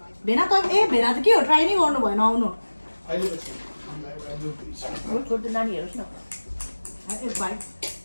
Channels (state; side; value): inverted; both; correlation -1.00